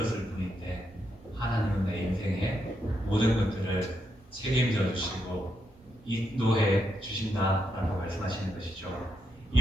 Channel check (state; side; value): normal; both; correlation 0.81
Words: 뿐인데 하나님은 내 인생의 모든 것들을 책임져 주시고 인도해 주신다라고 말씀하시는 것이죠.